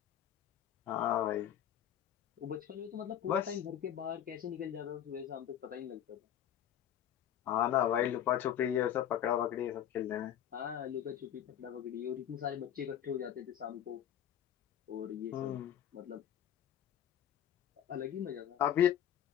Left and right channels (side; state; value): right; quieter; 10.3 dB